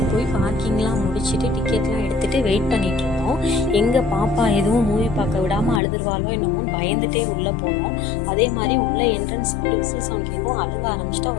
போய் பார்க்கிங்லாம் முடிச்சுட்டு டிக்கெட்லாம் எடுத்துகிட்டு வெயிட் பண்ணிகிட்டு இருந்தோம். எங்கள் பாப்பா எதுவும் மூவி பார்க்க விடாமல் அழுதுருவாளோ என்னமோ பயந்துகிட்டே உள்ளே போனோம். அதே மாதிரி உள்ளே என்ட்ரன்ஸ் விசில் சவுண்ட் கேட்கும். அழுக ஆரம்பிச்சிட்டு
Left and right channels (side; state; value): right; drops out; at 5.8 s